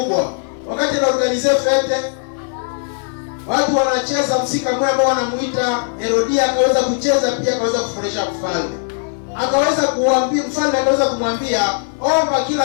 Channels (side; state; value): right; silent; 58 dB below the other